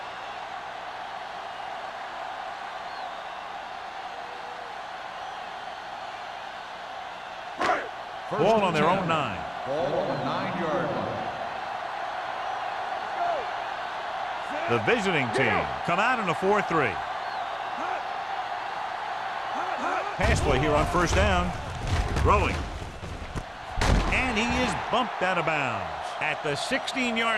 Ball on their own 9. Ball on the 9-yard line. The visiting team come out in a 4-3. Pass play here on 1st down. Throwing. And he is bumped out of bounds at the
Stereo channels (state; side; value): identical; both; correlation 1.00